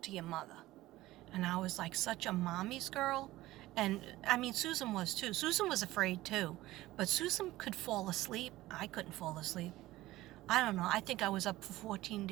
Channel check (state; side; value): quieter; left; 17.0 dB